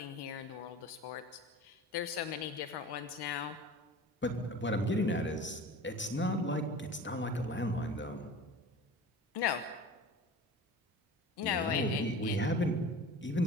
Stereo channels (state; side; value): normal; both; correlation 0.38